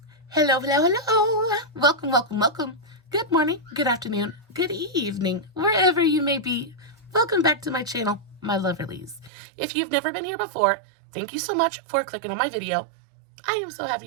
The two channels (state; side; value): drops out; left; at 9.3 s